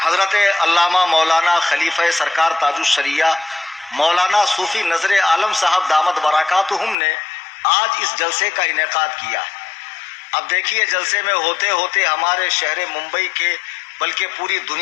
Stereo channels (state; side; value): drops out; right; at 7.0 s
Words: علامہ مولانا خلیفہ سرکار تاج الشریعہ مولانا صوفی نظر عالم صاحب دامت برکاتہم نے آج اس جلسے کا انعقاد کیا ہے۔ اب دیکھیے جلسے میں ہوتے ہوتے ہمارے شہر ممبئی کے بلکہ پوری